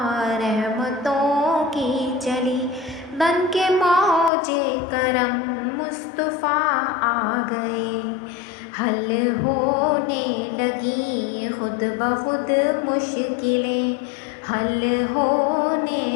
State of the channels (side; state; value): right; drops out; at 4.3 s